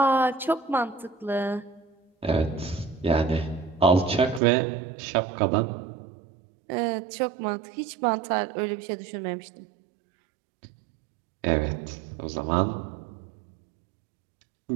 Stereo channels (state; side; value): drops out; left; at 4.4 s